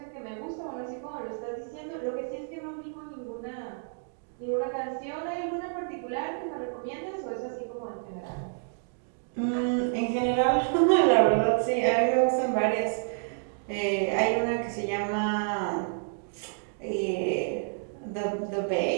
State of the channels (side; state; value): left; silent; digital silence